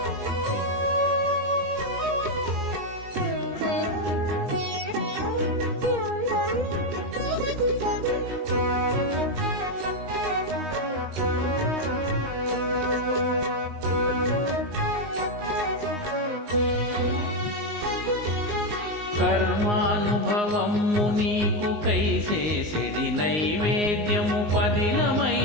కర్మానుభవము నీకు కైసేసెడి నైవేద్యము,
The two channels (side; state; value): left; late; 19 ms